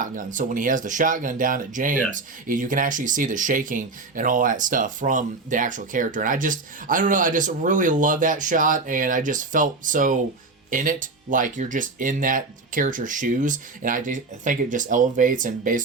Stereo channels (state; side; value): quieter; left; 3.7 dB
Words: so when he has the shotgun down at James, you can actually see the shaking and all that stuff from the actual character. And I just really love that shot, and I just felt so in it, like you're just in that character's shoes, and I think it just elevates and